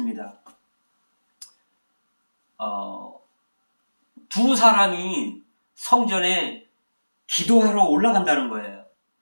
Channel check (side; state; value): both; inverted; correlation -1.00